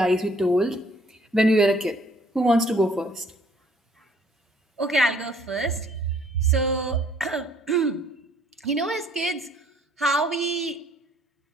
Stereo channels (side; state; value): both; normal; correlation 0.61